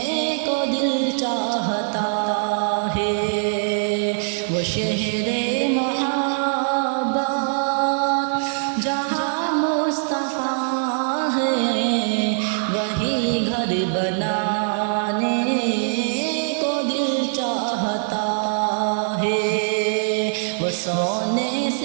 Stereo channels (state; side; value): silent; left; digital silence